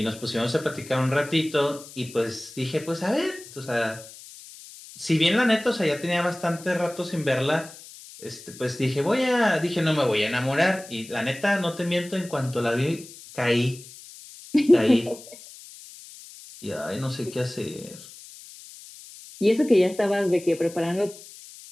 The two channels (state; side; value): noise; left; hiss, 18 dB below the sound